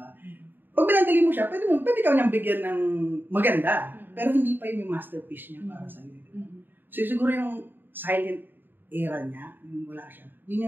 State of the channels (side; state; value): left; late; 0.094 ms